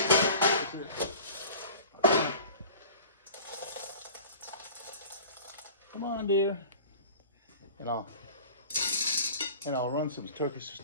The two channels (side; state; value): both; inverted; correlation -0.41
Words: it. Come on, dear. And I'll run some